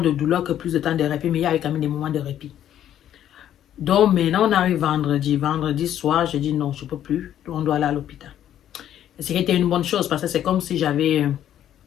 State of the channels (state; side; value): quieter; right; 11.0 dB